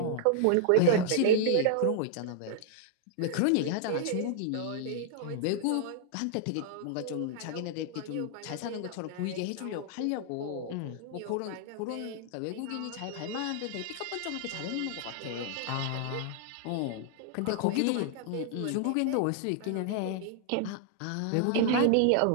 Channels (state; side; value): different; both; correlation -0.01